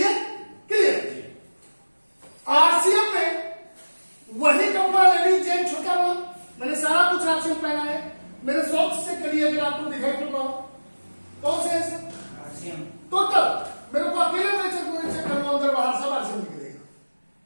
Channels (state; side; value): inverted; both; correlation -1.00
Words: आरसीएम पहना है? मेरे सॉक्स से करिए अगर आपको दिखाई पड़ रहा हो। कौन से है सर? टोटल मेरे को अकेले में चेक करूंगा, अंदर बाहर सब आरसीएम निकलेगा।